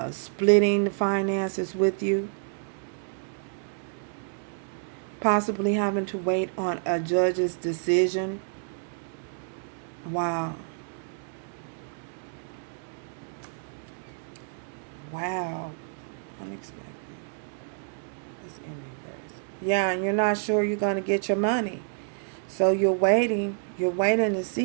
splitting the finances with you. Possibly having to wait on a judge's decision. Wow. Wow. Unexpected. It's in reverse. Yeah, and you're not sure you're going to get your money. So you're waiting. You're waiting to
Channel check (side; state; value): left; silent; digital silence